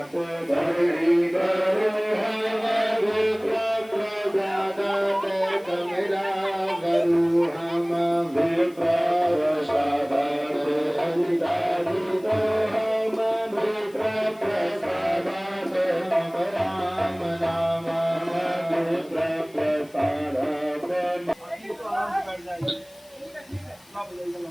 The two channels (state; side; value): noise; left; hiss, 27 dB below the sound